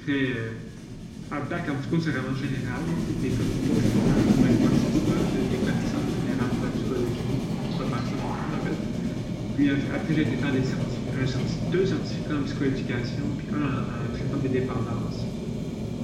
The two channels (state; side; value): identical; both; correlation 1.00